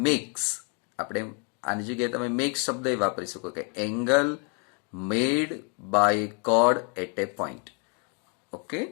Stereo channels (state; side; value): quieter; right; 36.9 dB